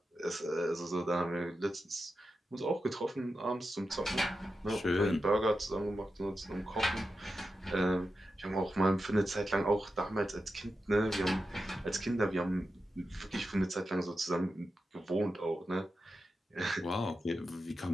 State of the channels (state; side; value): normal; both; correlation 0.90